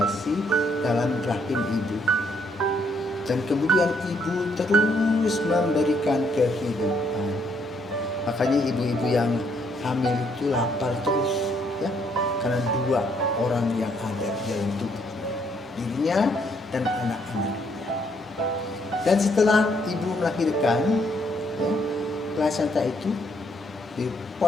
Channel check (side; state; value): both; normal; correlation 0.71